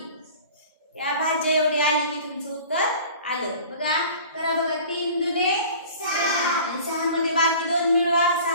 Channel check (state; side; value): inverted; both; correlation -0.43